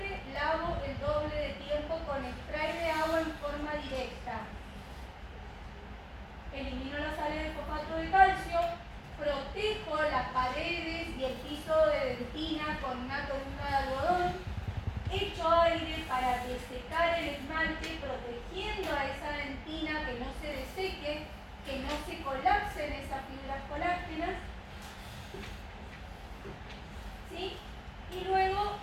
lavo el doble de tiempo con spray de agua en forma directa. Elimino las sales de fosfato de calcio, protejo las paredes y el piso de dentina con una columna de algodón, echo aire para desecar el esmalte, protegiendo a esa dentina que no se deseque, que no se colapsen esas fibras colágenas, ¿sí? Y luego,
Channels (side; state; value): both; identical; correlation 1.00